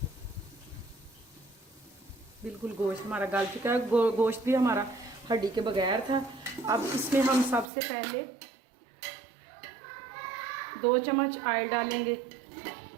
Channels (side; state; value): left; drops out; at 7.7 s